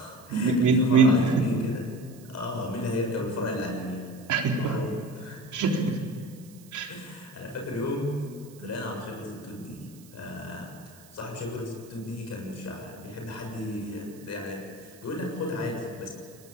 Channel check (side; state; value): right; noise; hiss, 23 dB below the sound